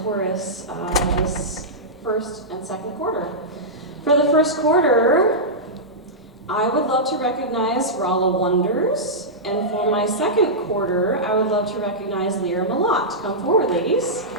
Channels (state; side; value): normal; both; correlation -0.12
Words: chorus this first and second quarter. For the first quarter, I would love to recognize Rala Wonders. And for my second quarter, I would love to recognize Lyra Malott. Come forward, ladies.